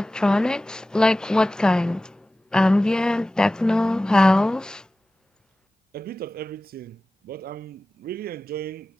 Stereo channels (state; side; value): normal; both; correlation 0.96